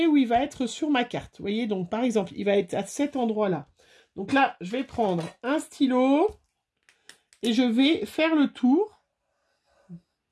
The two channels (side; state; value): both; identical; correlation 1.00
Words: où il va être sur ma carte. Vous voyez, donc par exemple, il va être à cet endroit-là. Donc là, je vais prendre un stylo et je vais faire le tour.